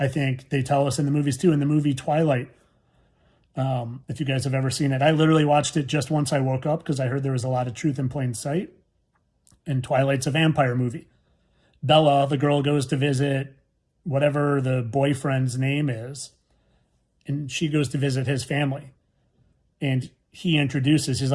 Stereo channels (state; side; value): identical; both; correlation 1.00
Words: think they tell us in the movies too, in the movie Twilight, if you guys have ever seen it. I literally watched it just once I woke up because I heard there was a lot of truth in plain sight. And Twilight's a vampire movie. Bella, the girl, goes to visit whatever the boyfriend's name is, and she goes to visit his family. And he introduces, he's